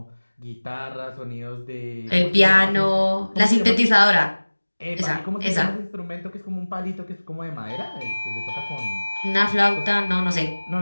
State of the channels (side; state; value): both; inverted; correlation -1.00